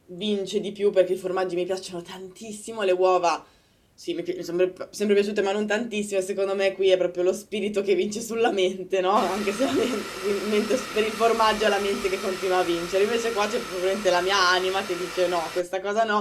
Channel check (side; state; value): both; identical; correlation 1.00